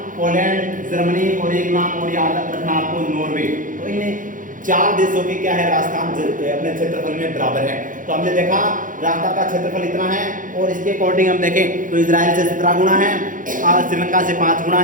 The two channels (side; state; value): left; late; 0.39 ms